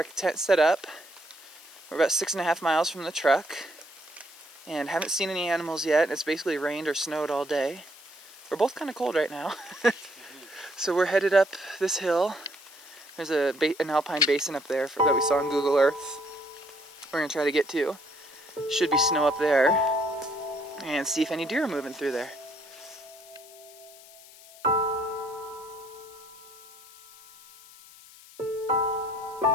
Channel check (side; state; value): left; noise; hiss, 21 dB below the sound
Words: tent set up. We're about 6.5 miles from the truck and haven't seen any animals yet. It's basically rained or snowed all day. We're both kind of cold right now. So we're headed up this hill. There's an alpine basin up there that we saw on Google Earth. We're going to try to get to. Should be snow up there. And see if any deer are moving through there.